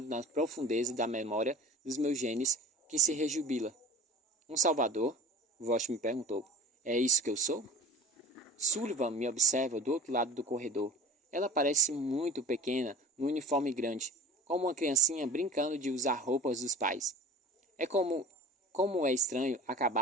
na profundeza da memória dos meus genes, que se rejubila. Um salvador? Vosh me perguntou. É isso que eu sou? Sullivan me observa do outro lado do corredor. Ela parece muito pequena, no uniforme grande, como uma criancinha brincando de usar roupas dos pais. É como é estranho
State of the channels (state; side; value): normal; both; correlation 0.40